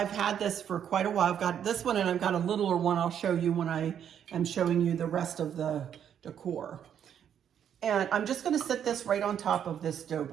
had this for quite a while. I've got this one and I've got a littler one I'll show you when I am showing you the rest of the decor. And I'm just going to sit this right on top of this dough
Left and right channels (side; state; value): left; quieter; 9.0 dB